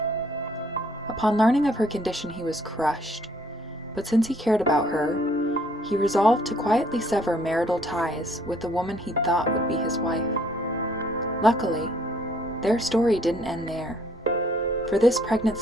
Upon learning of her condition, he was crushed, but since he cared about her, he resolved to quietly sever marital ties with the woman he thought would be his wife. Luckily, their story didn't end there, for this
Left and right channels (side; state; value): both; normal; correlation 0.63